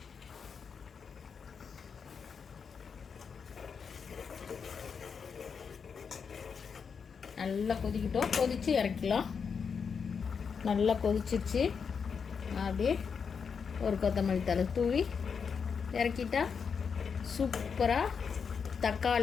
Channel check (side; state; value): right; quieter; 6.2 dB